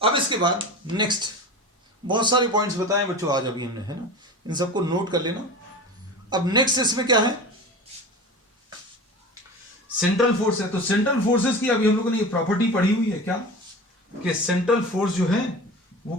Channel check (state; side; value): normal; both; correlation 0.33